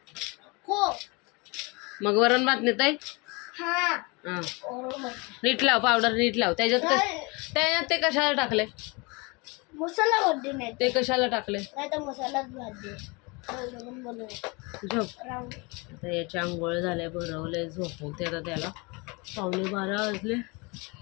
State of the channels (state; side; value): quieter; right; 28.1 dB